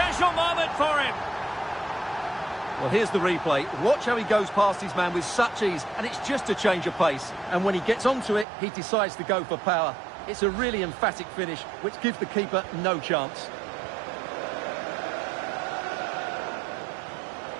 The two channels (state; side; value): drops out; left; at 8.5 s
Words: moment for him. Well, here's the replay. Watch how he goes past his man with such ease, and it's just a change of pace. And when he gets onto it, he decides to go for power. It's a really emphatic finish, which gives the keeper no chance.